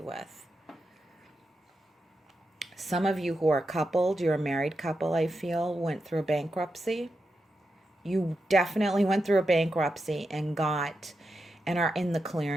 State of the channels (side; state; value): both; normal; correlation 0.87